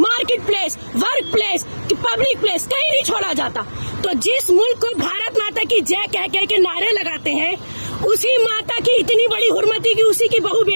place, work place, public place कहीं नहीं छोड़ा जाता। तो जिस मुल्क को भारत माता की जय कह कह के नारे लगाते हैं, उसी माता की इतनी बड़ी हुर्मती की उसी की बहू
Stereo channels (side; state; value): both; inverted; correlation -1.00